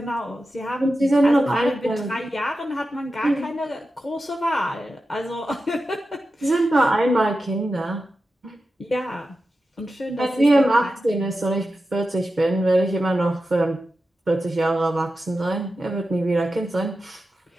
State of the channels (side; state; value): both; normal; correlation 0.92